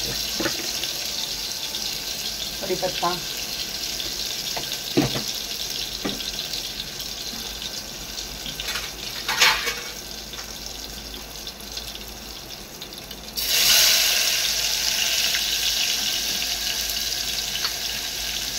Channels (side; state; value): both; identical; correlation 1.00